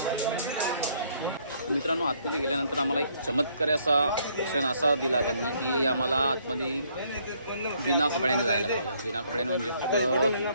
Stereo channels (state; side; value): inverted; both; correlation -0.67